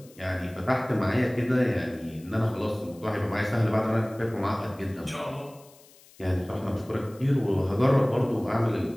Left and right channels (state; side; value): noise; left; hiss, 26 dB below the sound